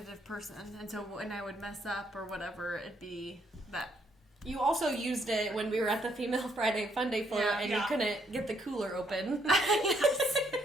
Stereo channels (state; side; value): normal; both; correlation 0.72